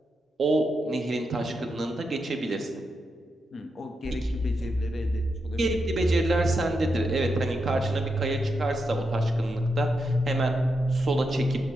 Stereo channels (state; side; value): normal; both; correlation 0.85